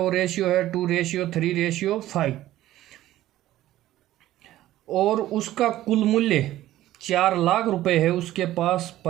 रेशियो है 2:3:5 और उसका कुल मूल्य 4 लाख रुपए है। उसके पास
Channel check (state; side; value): quieter; left; 14.5 dB